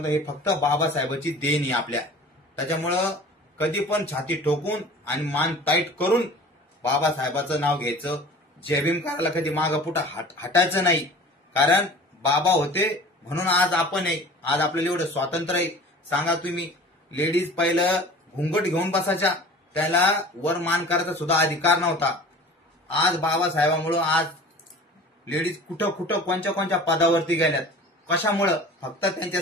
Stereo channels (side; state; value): both; normal; correlation 0.42